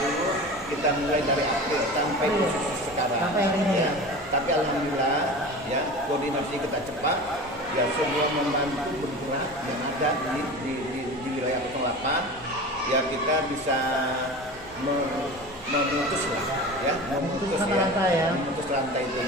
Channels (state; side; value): noise; right; hum, 25 dB below the sound